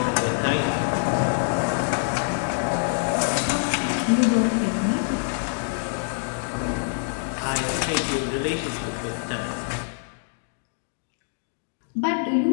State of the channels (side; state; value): right; silent; 62 dB below the other